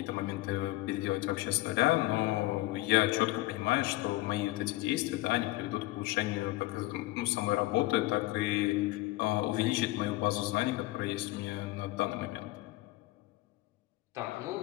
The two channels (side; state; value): right; quieter; 19.3 dB